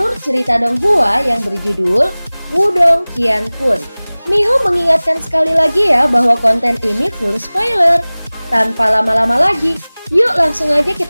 cerita Donghua yang berjudul Wudong Qiankun. Mihu mengingatkan sekali lagi ya bahwa konten ini full spoiler. Tanpa lama-lama lagi, yuk langsung aja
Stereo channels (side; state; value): both; inverted; correlation -0.99